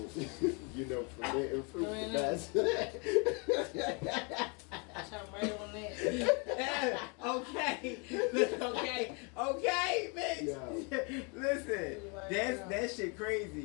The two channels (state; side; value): quieter; right; 33.6 dB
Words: You know, forbidden fruit the Right. best. I'm right on that. Okay, bitch. Yo. Listen, that shit